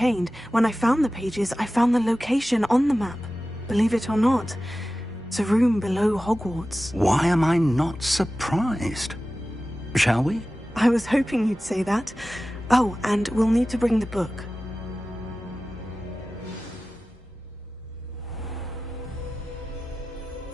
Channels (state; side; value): normal; both; correlation 0.95